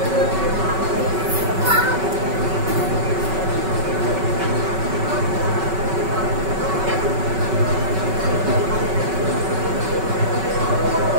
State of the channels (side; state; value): left; late; 5.3 ms